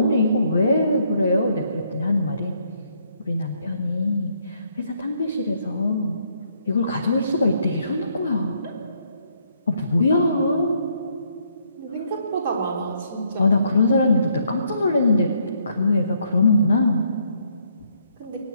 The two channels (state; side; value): inverted; both; correlation -0.71